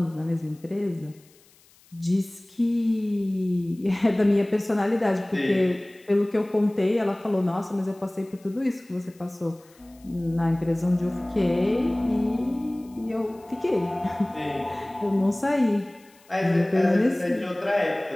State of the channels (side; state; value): left; noise; hiss, 29 dB below the sound